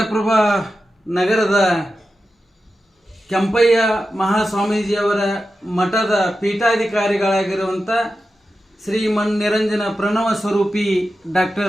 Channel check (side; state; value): both; normal; correlation 0.91